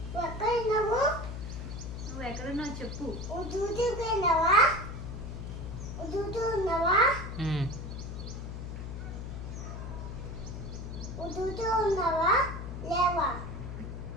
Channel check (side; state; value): left; noise; hum, 7 dB below the sound